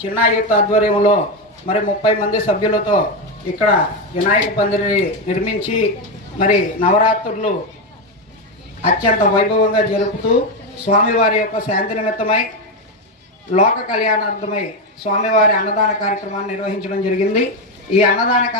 చిన్న యూత్ ఆధ్వర్యంలో మరి 30 మంది సభ్యులతో ఇక్కడ వినాయక పందిరిని నిర్మించి మరి నవరాత్రులు అత్యంత వైభవంగా జరుపుతూ స్వామివారి యొక్క శాంతి నిమిత్తమై లోక కళ్యాణార్థమై స్వామివారి అన్నదాన కార్యక్రమాన్ని నిర్వహించడం జరిగింది. ఈ అన్నదాన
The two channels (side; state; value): both; normal; correlation 0.09